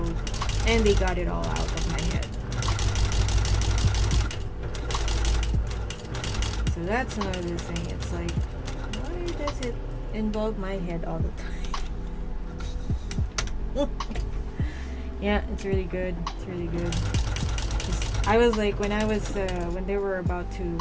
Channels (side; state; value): both; identical; correlation 1.00